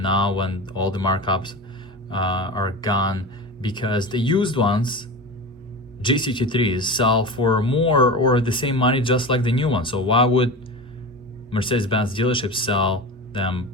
now when all the markups are gone, because the used ones, GCT3s, sell for more or the same money just like the new ones. So why would Mercedes-Benz dealerships sell them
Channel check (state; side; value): normal; both; correlation 0.28